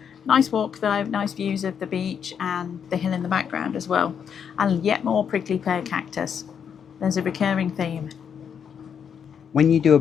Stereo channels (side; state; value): right; quieter; 7.6 dB